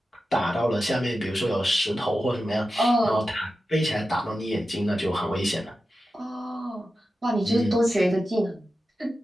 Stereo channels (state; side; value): normal; both; correlation 0.92